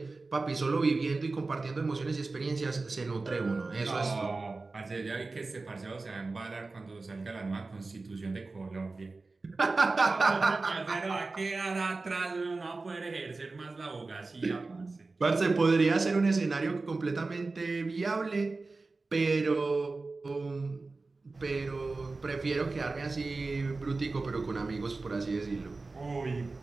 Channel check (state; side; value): quieter; left; 3.6 dB